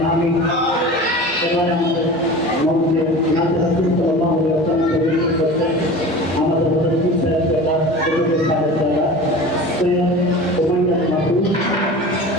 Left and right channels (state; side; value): normal; both; correlation 0.36